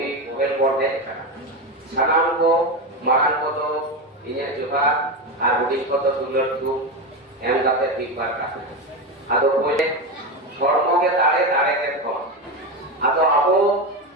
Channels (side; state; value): both; normal; correlation 0.17